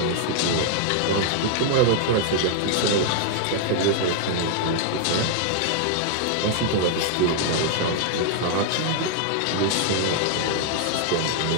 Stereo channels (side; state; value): both; different; correlation 0.00